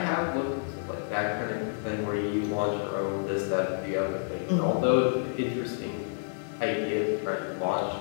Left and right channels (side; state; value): right; silent; digital silence